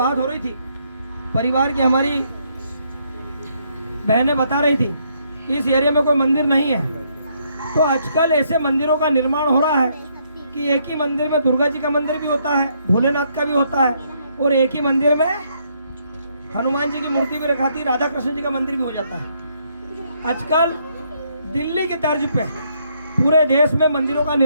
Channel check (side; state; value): both; inverted; correlation -0.72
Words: हो रही थी, परिवार की हमारी बहनें बता रही थी कि इस एरिया में कोई मंदिर नहीं है। तो आजकल ऐसे मंदिरों का निर्माण हो रहा है कि एक ही मंदिर में दुर्गा जी का मंदिर भी होता है, भोलेनाथ का भी होता है, और एक ही मंदिर में हनुमान जी की मूर्ति भी रखाती, राधा कृष्ण जी का मंदिर भी हो जाता है। आजकल दिल्ली के तर्ज पे पूरे देश में मंदिरों का